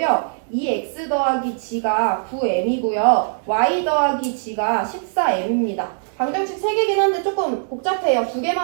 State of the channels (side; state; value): left; silent; digital silence